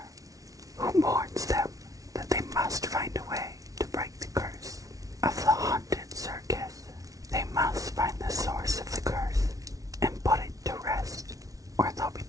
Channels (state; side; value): late; left; 0.17 ms